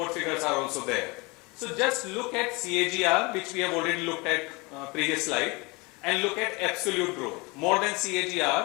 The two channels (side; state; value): right; quieter; 26.6 dB